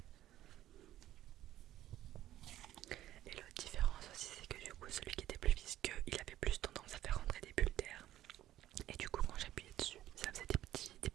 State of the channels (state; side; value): quieter; left; 13.3 dB